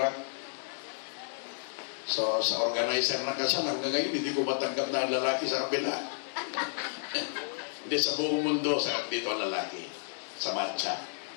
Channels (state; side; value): silent; right; digital silence